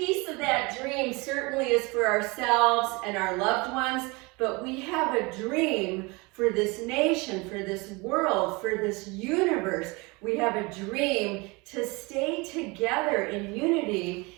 of that dream certainly is for ourselves and our loved ones, but we have a dream for this nation, for this world, for this universe. We have a dream to stay together in unity,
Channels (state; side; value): quieter; left; 26.2 dB